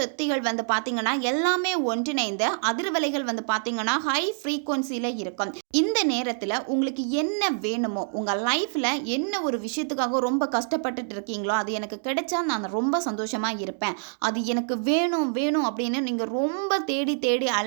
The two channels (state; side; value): silent; left; digital silence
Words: வந்து பார்த்தீங்கன்னா எல்லாமே ஒன்றிணைந்து அதிர்வலைகள் வந்து பார்த்தீங்கன்னா ஹை ஃப்ரீக்வன்சியில் இருக்கும். இந்த நேரத்தில் உங்களுக்கு என்ன வேணுமோ, உங்கள் லைஃப்பில் என்ன ஒரு விஷயத்துக்காக ரொம்ப கஷ்டப்பட்டுட்டு இருக்கீங்களோ, அது எனக்கு கிடைச்சா நான் ரொம்ப சந்தோஷமாக இருப்பேன், அது எனக்கு வேணும் அப்படின்னு நீங்கள் ரொம்ப தேடி